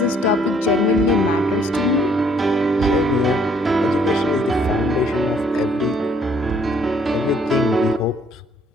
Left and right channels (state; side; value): normal; both; correlation 0.64